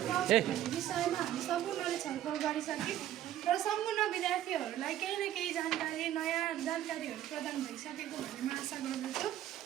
विषयमा हामी सम्पूर्णले छलफल गरिसक्यौँ र सम्पूर्ण विद्यार्थीहरूलाई केही न केही जानकारी, नयाँ जानकारीहरू प्रदान भइसकेको भन्ने म आशा गर्दछु।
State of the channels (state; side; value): quieter; left; 12.3 dB